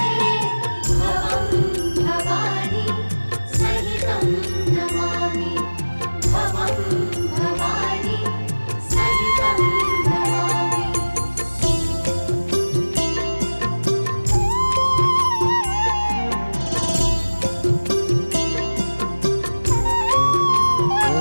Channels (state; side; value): inverted; both; correlation -1.00